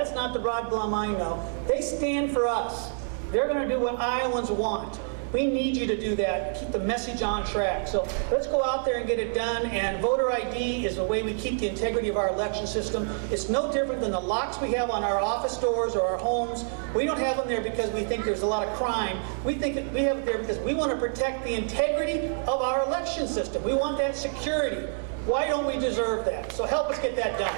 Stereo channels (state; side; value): silent; left; digital silence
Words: not the Rod Blum I know. They stand for us. They're going to do what Iowans want. We need you to do that, keep the message on track. So let's go out there and get it done, and voter ID is the way we keep the integrity of our election system. It's no different than the locks we have on our office doors or our homes. We don't have them there because we think there's a lot of crime. We think that we have it there because we want to protect the integrity of our election system. We want that security. Why don't we deserve that? So help us get that done.